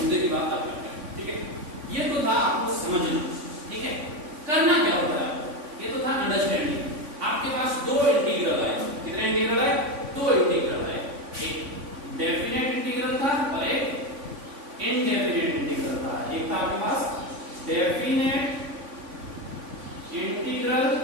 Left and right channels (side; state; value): left; late; 3.5 ms